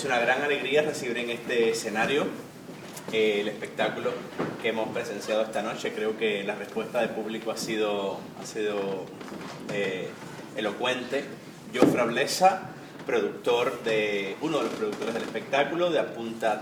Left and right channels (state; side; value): identical; both; correlation 1.00